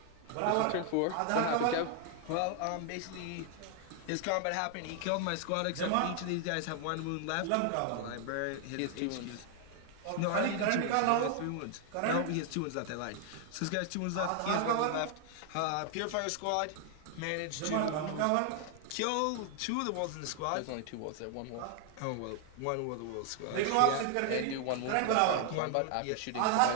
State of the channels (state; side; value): different; both; correlation 0.00